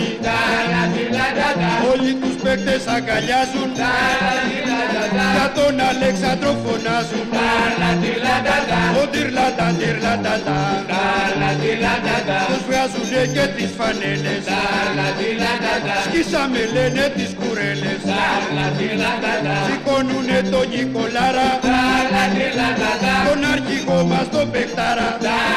Όλοι τους παίκτες αγκαλιάζουν. Για τον Αλέξανδρο φωνάζουν. Ο τυρλατά τους βγάζουνε και τις φανέλες. Σκίσαμε λένε τις κουρέλες. Σηκώνουνε τον Νικολάρα, τον αρχηγό μας τον παιχτάρα.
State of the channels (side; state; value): both; identical; correlation 1.00